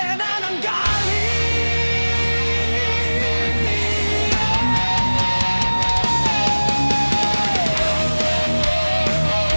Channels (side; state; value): both; inverted; correlation -1.00